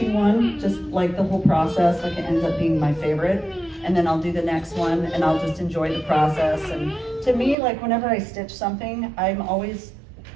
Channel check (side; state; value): left; drops out; at 7.6 s